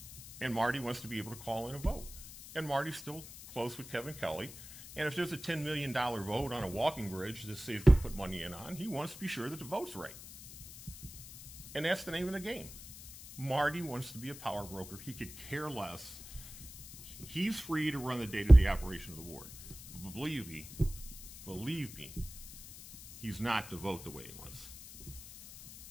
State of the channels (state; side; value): noise; left; hiss, 15 dB below the sound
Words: And Marty wants to be able to call in a vote. And Marty's still close with Kevin Kelly. And if there's a $10 million vote on a walking bridge that says to put money in on, he wants to be sure that the vote's right. And that's the name of the game. Marty wants to be a power broker. He could care less. He's free to run the day-to-day operation of the ward. But believe me, he's not to vote the way he wants.